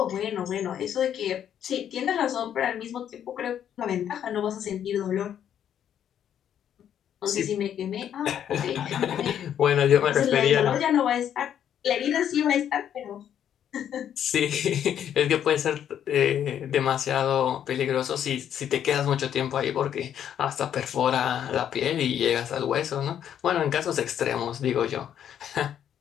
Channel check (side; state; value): right; quieter; 9.6 dB